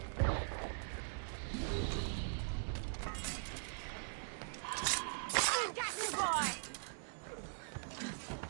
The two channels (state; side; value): silent; left; digital silence